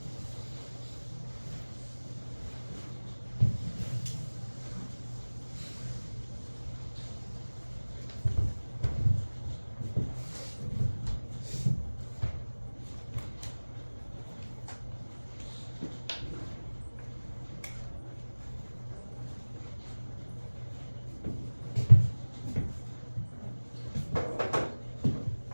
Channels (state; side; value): inverted; both; correlation -1.00